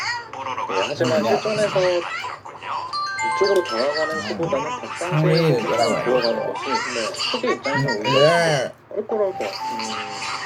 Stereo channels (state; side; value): identical; both; correlation 1.00